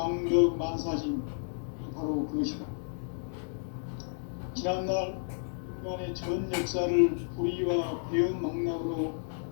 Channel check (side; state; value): right; silent; digital silence